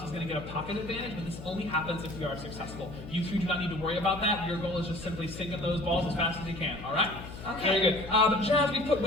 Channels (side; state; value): left; noise; hum, 12 dB below the sound